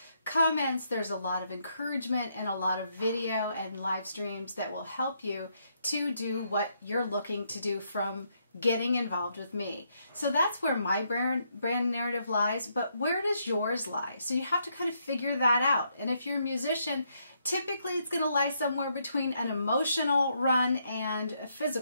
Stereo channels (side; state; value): both; inverted; correlation -0.76